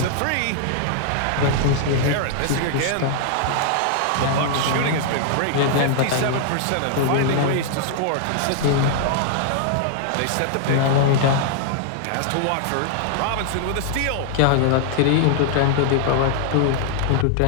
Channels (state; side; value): different; both; correlation -0.01